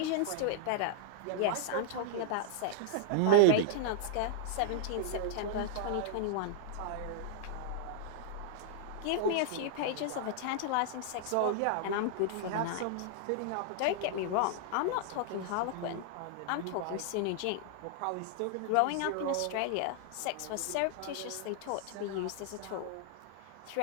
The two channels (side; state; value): both; different; correlation -0.01